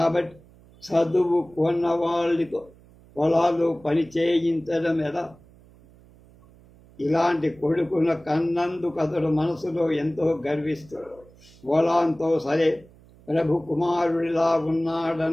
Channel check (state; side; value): noise; right; hum, 26 dB below the sound